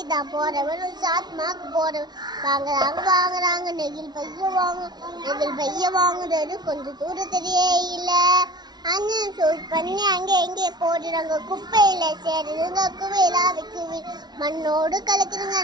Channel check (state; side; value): late; left; 0.20 ms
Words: தான் போறவனும் சாத்மாக்கு போறவன் வாங்குறாங்க நெகிழ் பைய வாங்குறது கொஞ்சம் தூரம் தெரியவே இல்லை. அண்ணன் சூட் பண்ணி அங்கே எங்கே போடுறாங்க, குப்பையில சேருதுங்க, குவையில வைக்குவி மண்ணோடு கலக்குதுங்க,